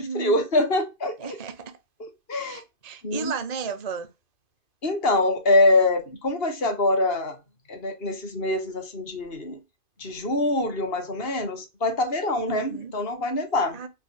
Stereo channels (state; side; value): late; right; 2.5 ms